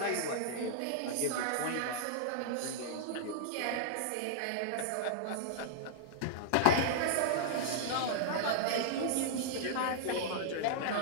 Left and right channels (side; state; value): both; different; correlation -0.02